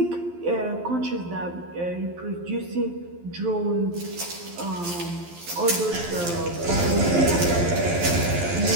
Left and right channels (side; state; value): left; late; 12 ms